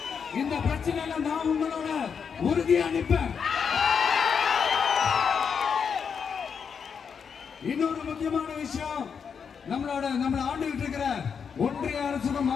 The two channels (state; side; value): quieter; right; 6.6 dB